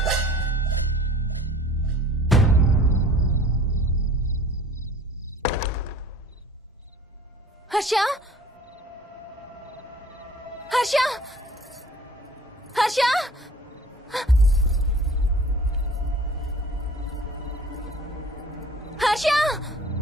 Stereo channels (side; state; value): both; normal; correlation 0.48